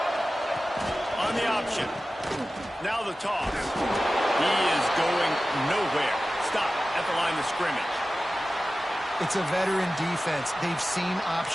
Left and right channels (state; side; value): normal; both; correlation 0.95